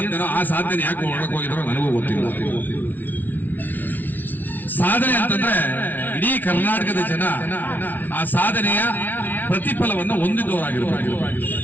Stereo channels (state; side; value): late; right; 0.084 ms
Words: ಆ ಸಾಧನೆ ಯಾಕೆ ಒಳಗೆ ಹೋಗಿದ್ರು ನನಗೂ ಗೊತ್ತಿಲ್ಲ. ಸಾಧನೆ ಅಂತಂದ್ರೆ ಇಡೀ ಕರ್ನಾಟಕದ ಜನ ಆ ಸಾಧನೆಯ ಪ್ರತಿಫಲವನ್ನು ಹೊಂದಿದವರಾಗಿರ್ಬೇಕು.